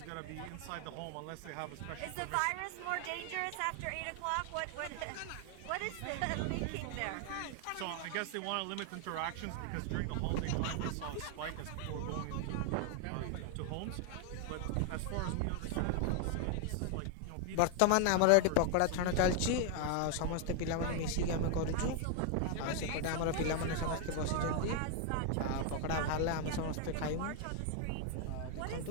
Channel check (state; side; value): different; both; correlation 0.00